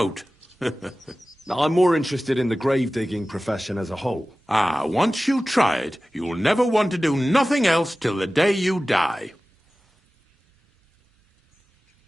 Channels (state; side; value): normal; both; correlation 0.96